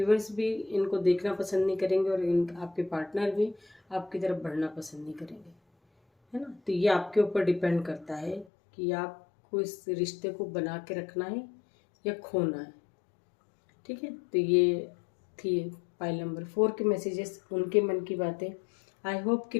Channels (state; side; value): drops out; right; at 8.5 s